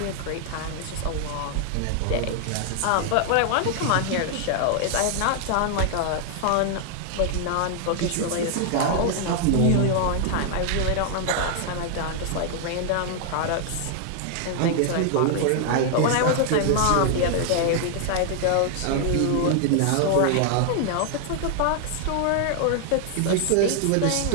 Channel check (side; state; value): both; different; correlation 0.00